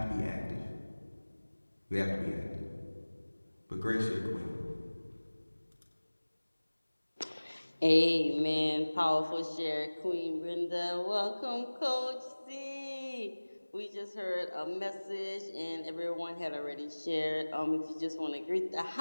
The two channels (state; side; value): inverted; both; correlation -1.00